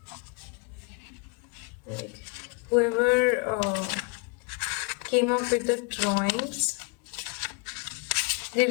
Like, whoever came up with the drawings did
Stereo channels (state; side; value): quieter; right; 31.9 dB